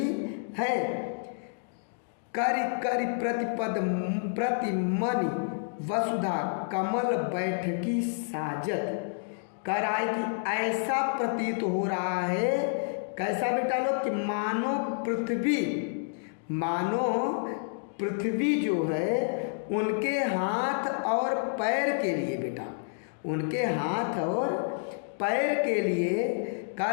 है। करि करि प्रतिपद प्रतिमनि वसुधा कमल बैठकी साजत। कर आए कि ऐसा प्रतीत हो रहा है, कैसा बेटा लोग, कि मानो पृथ्वी जो है उनके हाथ और पैर के लिए बेटा, उनके हाथ और पैर के लिए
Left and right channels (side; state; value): right; silent; digital silence